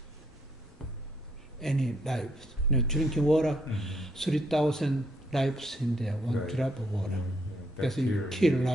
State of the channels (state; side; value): normal; both; correlation 0.72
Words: any lives. Drinking water, 3,000 lives in there, one Right. drop of water. Yeah, That's you bacteria. kill